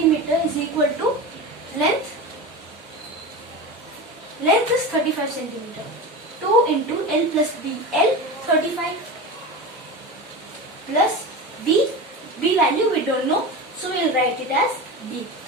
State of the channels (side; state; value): both; normal; correlation 0.27